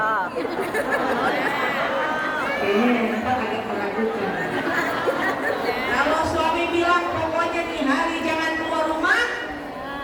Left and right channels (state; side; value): identical; both; correlation 1.00